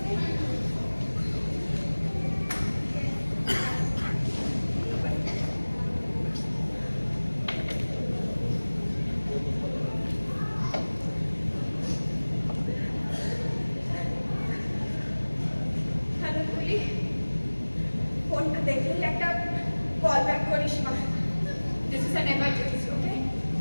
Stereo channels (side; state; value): both; inverted; correlation -1.00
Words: ফোনটা দেখলেই একটা কল ব্যাক করিস মা। দিস ইজ অ্যান এমার্জেন্সি, ওকে?